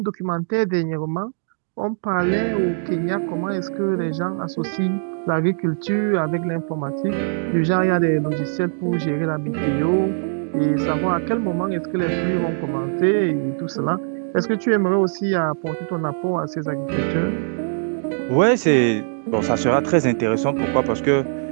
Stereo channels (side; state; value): left; silent; digital silence